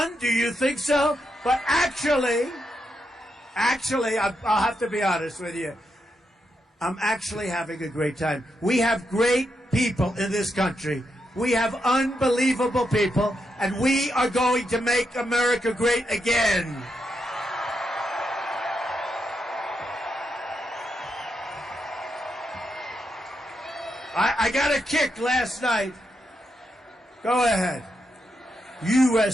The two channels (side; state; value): both; normal; correlation 0.83